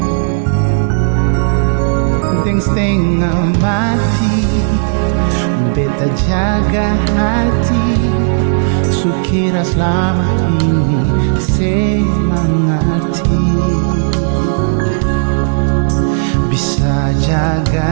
Dengseng mati, beta jaga hati, sukira selama ini semangatnya. Bisa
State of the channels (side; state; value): left; silent; digital silence